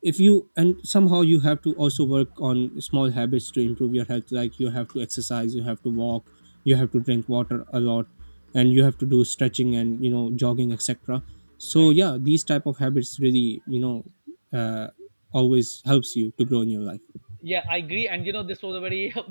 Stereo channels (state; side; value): inverted; both; correlation -1.00